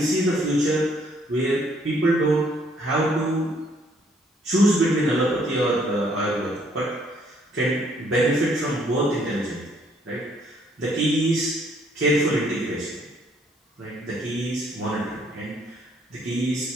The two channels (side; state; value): both; normal; correlation 0.66